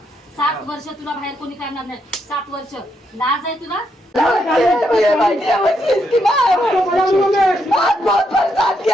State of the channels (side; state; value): both; normal; correlation 0.78